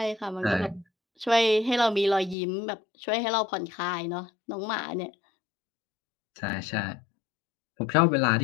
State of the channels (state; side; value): drops out; right; at 2.4 s